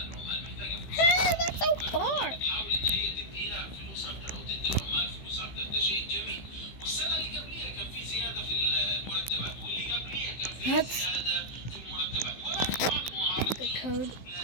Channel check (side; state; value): right; late; 15 ms